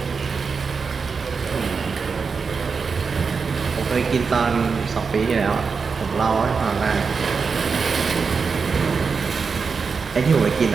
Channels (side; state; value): left; quieter; 5.2 dB